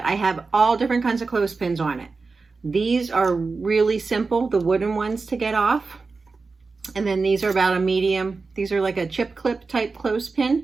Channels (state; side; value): quieter; left; 4.2 dB